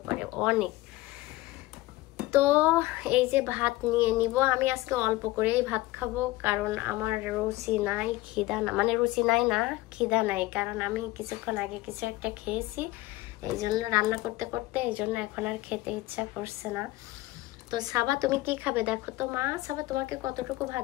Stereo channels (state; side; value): quieter; right; 18.5 dB